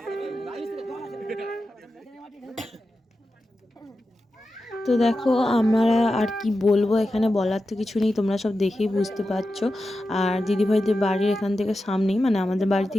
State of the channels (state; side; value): normal; both; correlation 0.91